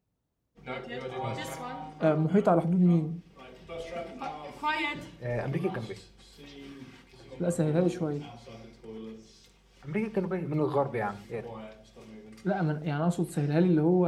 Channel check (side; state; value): both; identical; correlation 1.00